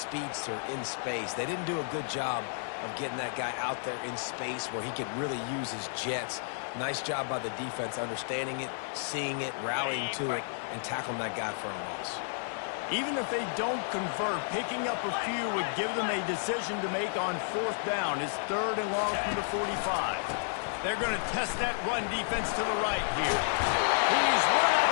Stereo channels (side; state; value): right; silent; digital silence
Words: in space. They didn't do a good job of getting that guy out there in space where he could really use his jets. Nice job by the defense understanding it, seeing it, rallying to it, and tackling that guy for a loss. Even if they don't convert, picking up a few would give them a decision to make on 4th down. It's 3rd and long from the 45. They're going to test that run defense to the right here. He's run out